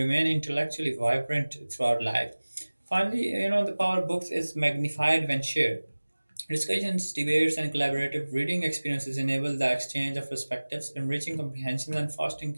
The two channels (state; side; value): inverted; both; correlation -1.00